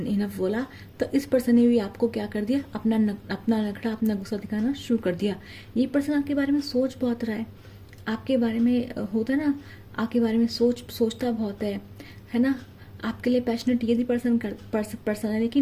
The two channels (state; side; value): identical; both; correlation 1.00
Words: बोला, तो इस पर्सन ने भी आपको क्या कर दिया, अपना नखरा, अपना गुस्सा दिखाना शुरू कर दिया। ये पर्सन आपके बारे में सोच बहुत रहा है, आपके बारे में होता है ना, आपके बारे में सोचता बहुत है ना। आपके लिए पैशनेट ये भी पर्सन है,